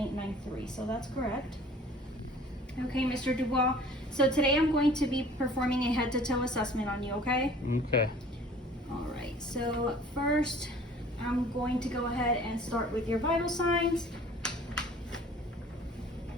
So that's correct. Okay, Mr. Dubois. So today I'm going to be performing a head-to-toe assessment on you, okay? Okay. All right, so first I'm going to go ahead and start with your vital signs.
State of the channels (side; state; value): both; normal; correlation 0.50